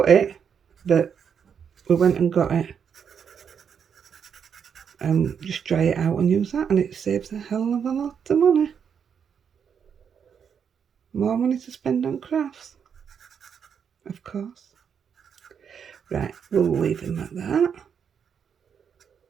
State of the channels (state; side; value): quieter; left; 7.3 dB